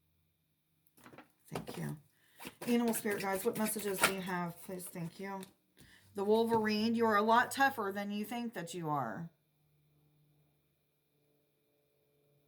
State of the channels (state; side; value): identical; both; correlation 1.00